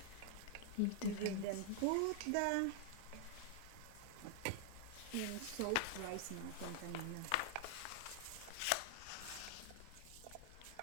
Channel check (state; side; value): different; both; correlation 0.00